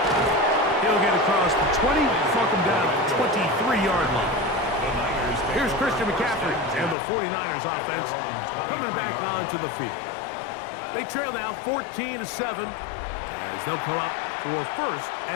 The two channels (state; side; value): drops out; right; at 7.0 s